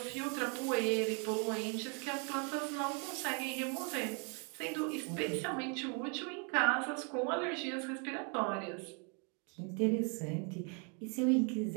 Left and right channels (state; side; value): quieter; left; 37.1 dB